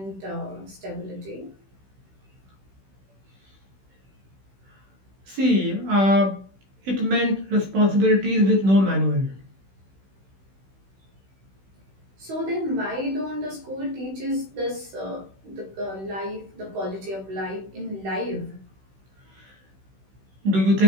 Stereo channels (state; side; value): late; left; 16 ms